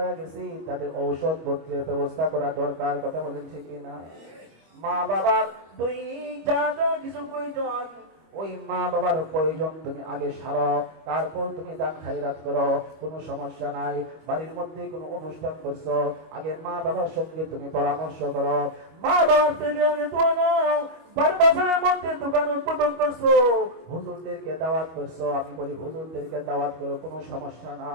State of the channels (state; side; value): late; left; 25 ms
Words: গেছে, তাদের ঔষধ পত্রের ব্যবস্থা করা দরকার। কথা বলেন ঠিক কিনা? মা বাবার দৈনিক যা যা কিছু প্রয়োজন, ওই মা বাবার প্রয়োজন তুমি আগে সারো, তারপর তুমি দান খায়রাত করো, কোনো সমস্যা নাই। বাড়ির মধ্যে কোনো অনুষ্ঠান করছো, আগে মা বাবার সঙ্গে তুমি পরামর্শ করো, মা বাবার থেকে আগে দোয়া নাও। বাজারের মধ্যে দোকান উদ্বোধন করছো, হুজুরদেরকে দাওয়াত করছো, আমি বলি হুজুরদেরকে দাওয়াত করো, কোনো সমস্যা